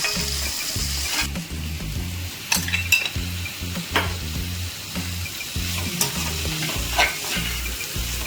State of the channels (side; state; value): both; identical; correlation 1.00